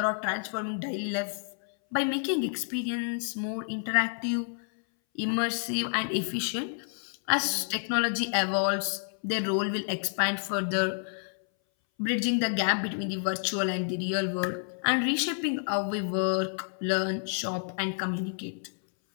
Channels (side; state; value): right; silent; 58 dB below the other